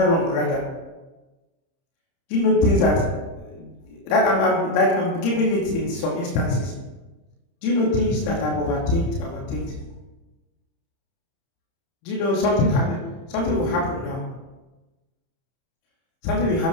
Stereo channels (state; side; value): late; right; 30 ms